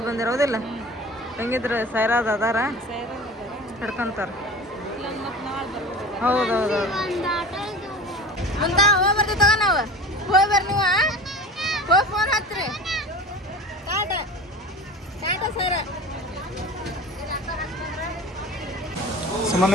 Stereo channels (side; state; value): both; normal; correlation 0.37